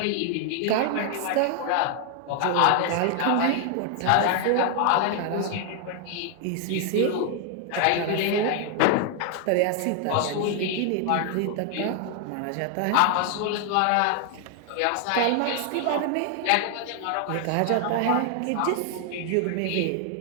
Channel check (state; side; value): different; both; correlation 0.00